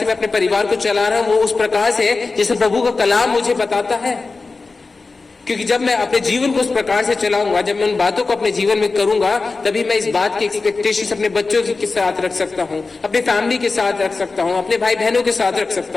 मैं अपने परिवार को चला रहा हूँ वो उस प्रकार से जैसे प्रभु का कलाम मुझे बताता है? क्योंकि जब मैं अपने जीवन को उस प्रकार से चलाऊंगा, जब मैं उन बातों को अपने जीवन में करूंगा, तभी मैं इस बात की एक्सपेक्टेशंस अपने बच्चों के साथ रख सकता हूं, अपने फैमिली के साथ रख सकता हूं, अपने भाई बहनों के साथ रख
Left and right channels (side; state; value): right; quieter; 3.9 dB